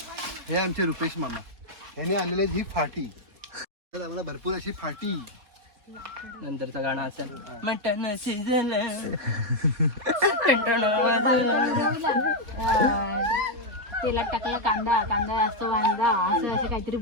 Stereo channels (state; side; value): late; left; 4.2 ms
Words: हे आमचे रुपेश मामा, ह्याने आणलेली ही फाटी. आम्हाला भरपूर अशी फाटी. नंतरचं गाणं असेल मटण शिजलं तेलात टाकला कांदा, कांदा असतो वांदा, असं असे काहीतरी